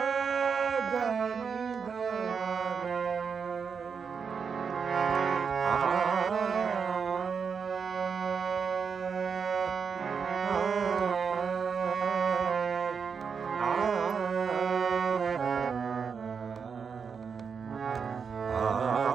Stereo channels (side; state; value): left; quieter; 6.1 dB